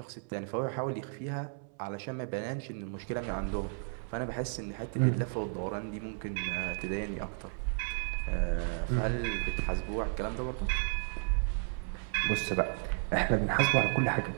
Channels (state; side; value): silent; left; 56 dB below the other